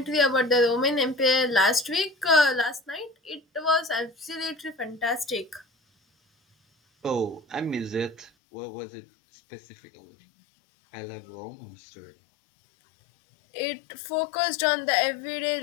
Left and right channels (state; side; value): drops out; right; at 8.3 s